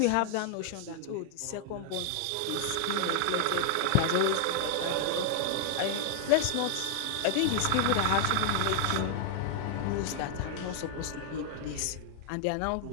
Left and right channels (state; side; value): different; both; correlation 0.00